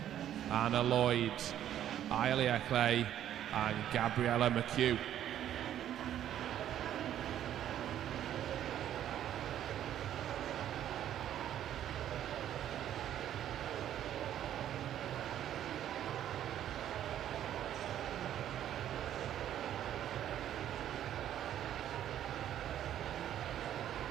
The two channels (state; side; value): quieter; left; 11.1 dB